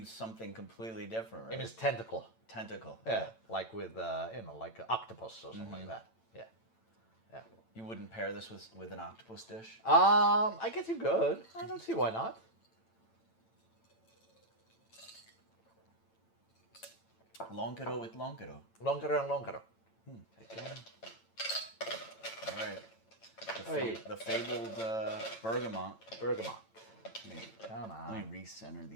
something completely different, right? It means tentacle. Tentacle. Yeah, like with like an octopus or something like that. Yeah. You wouldn't pair this with an octopus dish? I guess you could. I don't see why not. Lonkero with Lonkero. Lonkero and Lonkero. Again. All right. The fabled bergamot. Bergamot. Come on. Let me recenter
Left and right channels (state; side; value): late; right; 8.9 ms